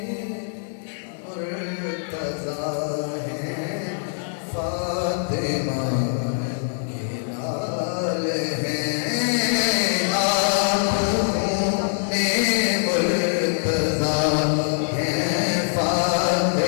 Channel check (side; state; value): right; silent; digital silence